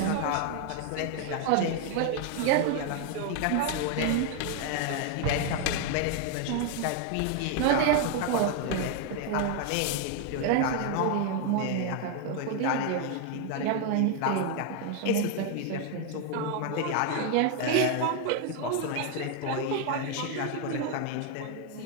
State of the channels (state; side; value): different; both; correlation 0.01